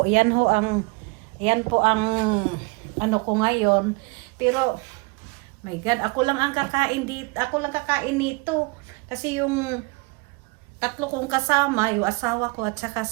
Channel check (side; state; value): left; quieter; 27.7 dB